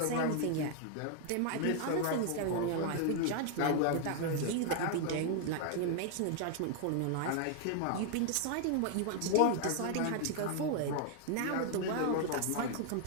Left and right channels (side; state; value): both; different; correlation 0.00